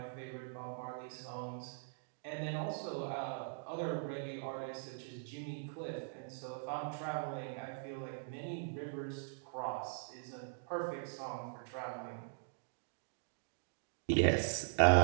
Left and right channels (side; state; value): left; silent; digital silence